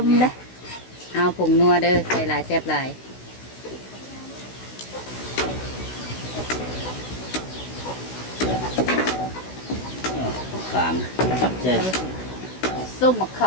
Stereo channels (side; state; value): right; late; 16 ms